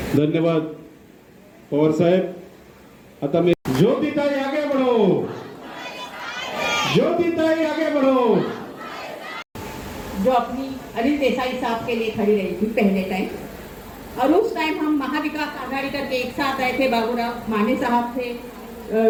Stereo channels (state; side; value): identical; both; correlation 1.00